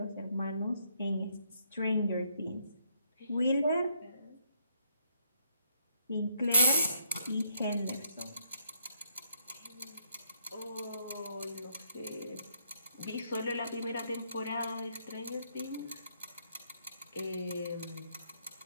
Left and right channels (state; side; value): inverted; both; correlation -0.72